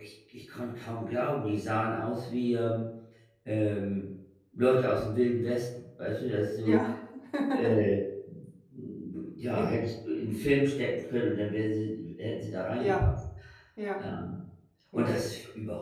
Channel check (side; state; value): both; identical; correlation 1.00